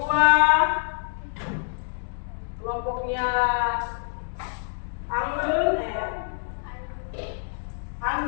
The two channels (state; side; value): silent; right; digital silence